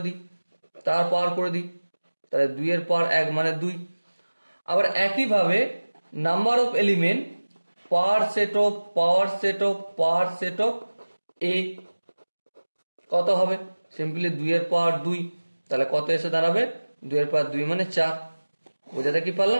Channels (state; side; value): inverted; both; correlation -1.00